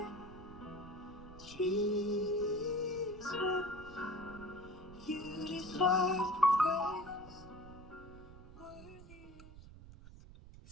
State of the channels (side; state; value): right; noise; rumble, 17 dB below the sound